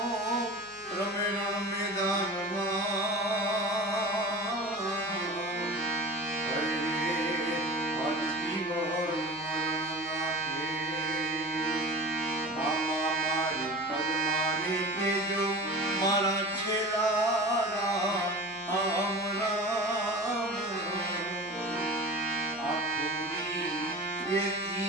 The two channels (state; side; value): noise; left; hum, 28 dB below the sound